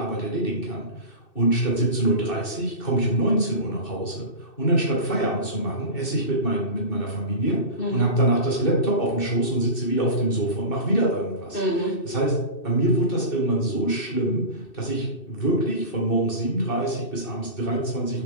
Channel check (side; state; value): right; late; 2.6 ms